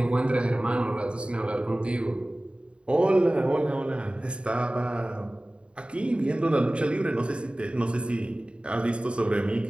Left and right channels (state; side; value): late; left; 0.056 ms